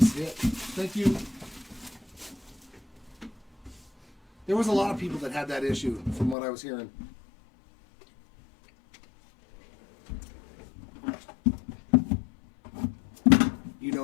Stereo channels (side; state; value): right; drops out; at 6.4 s